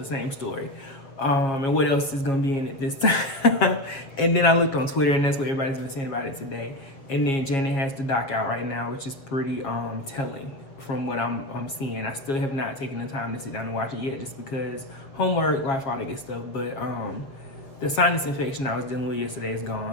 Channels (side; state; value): right; late; 7.2 ms